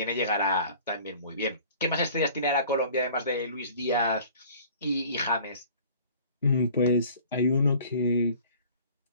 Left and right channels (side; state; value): both; inverted; correlation -0.49